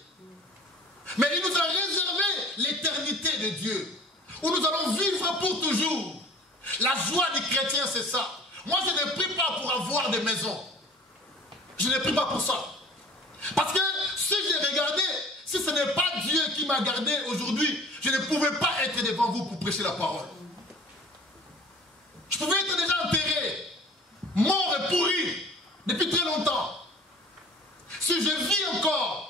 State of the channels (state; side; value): normal; both; correlation 0.47